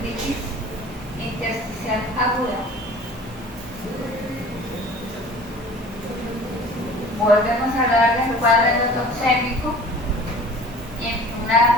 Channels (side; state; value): both; normal; correlation 0.45